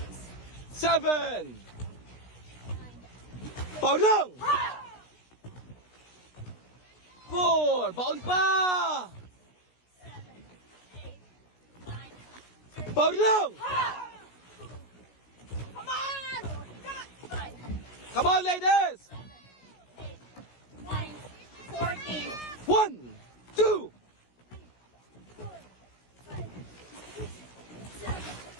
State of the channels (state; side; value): late; right; 16 ms